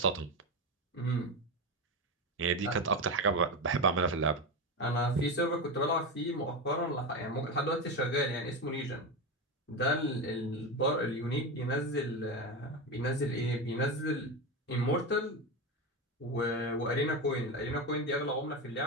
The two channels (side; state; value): both; normal; correlation 0.17